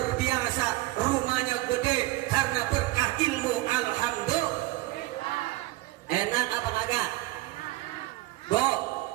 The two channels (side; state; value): left; quieter; 18.4 dB